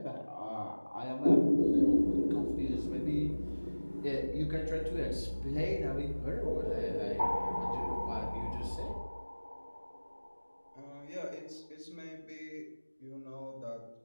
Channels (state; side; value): inverted; both; correlation -1.00